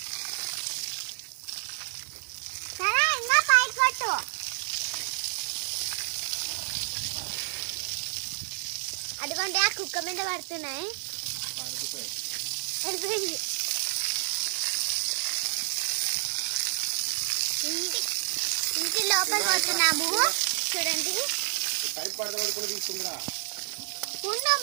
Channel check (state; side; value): silent; left; 58 dB below the other